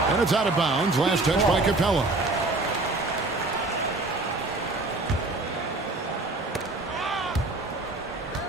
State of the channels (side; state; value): left; quieter; 3.1 dB